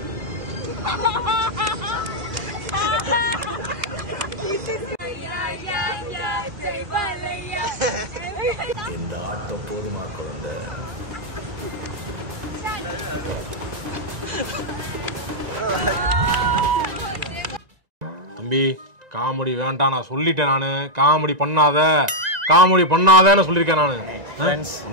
இந்த ஆட்டம் போதுமா குழந்தை? தம்பி காமெடி வேண்டாம், நான் சொல்லிட்டேன். நான் காமெடி பண்ணாதன்னு சொல்லியிருக்கேன். நான் ஃப்ரெண்ட்ஸ்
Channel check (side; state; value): left; late; 1.9 ms